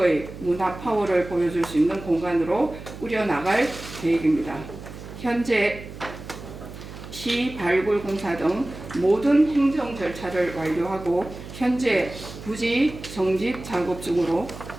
문화 파워를 보여줄 수 있는 공간으로 꾸려나갈 계획입니다. 현재 시 발굴 공사 등 모든 행정 절차를 완료하고 현재 부지 정집 작업 중으로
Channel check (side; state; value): right; noise; hum, 13 dB below the sound